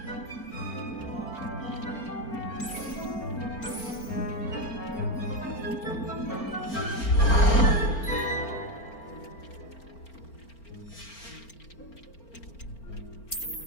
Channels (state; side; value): late; right; 4.4 ms